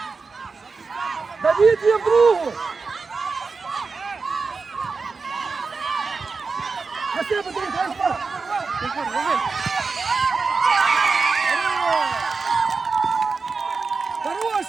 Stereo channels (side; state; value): left; quieter; 4.5 dB